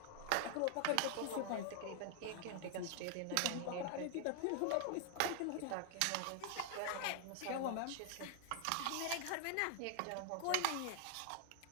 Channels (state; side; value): different; both; correlation 0.00